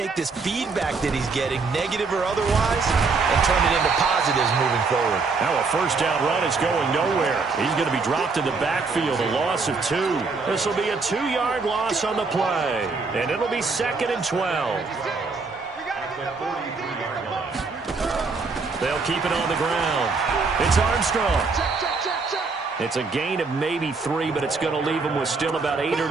this feedback that he's getting, negative or otherwise, and turn it into positives moving forward. Now a first down run is going nowhere. He's going to be dropped in the backfield, a loss of 2. This will be a 2-yard loss on the play, and it'll be 2nd and 12. They'll keep it on the ground. It's Armstrong. It's a gain of maybe 3, but it's going to leave them with still about 8 or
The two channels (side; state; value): left; quieter; 4.4 dB